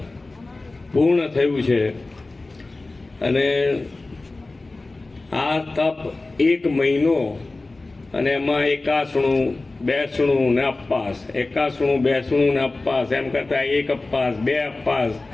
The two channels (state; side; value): quieter; right; 3.2 dB